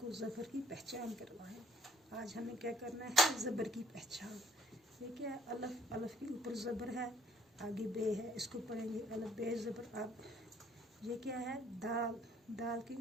ज़बर की पहचान करवाएं। आज हमें क्या करना है, ज़बर की पहचान। ये क्या है, अलफ, अलफ के ऊपर ज़बर है, आगे बे है, इसको पढ़ेंगे अलफ बे ज़बर अब। ये क्या है, दाल, दाल के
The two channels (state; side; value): normal; both; correlation 0.60